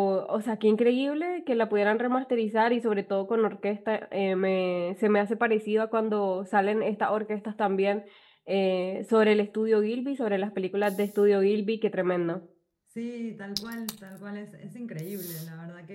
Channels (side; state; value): both; identical; correlation 1.00